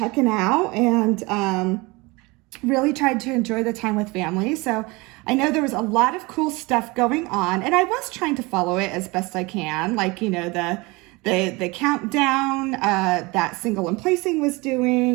out and really tried to enjoy the time with family. So I know there was a lot of cool stuff going on, and I was trying to follow it as best I can, like, the countdown that Single and Placing was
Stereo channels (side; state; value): left; quieter; 24.5 dB